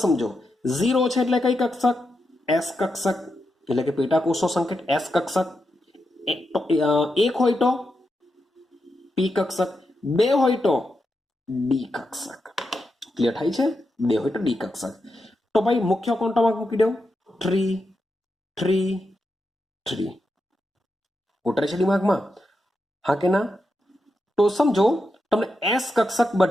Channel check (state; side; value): normal; both; correlation 0.86